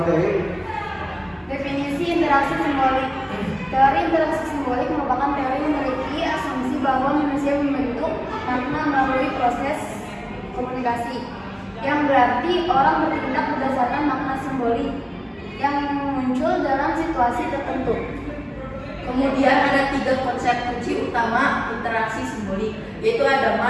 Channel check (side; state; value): both; identical; correlation 1.00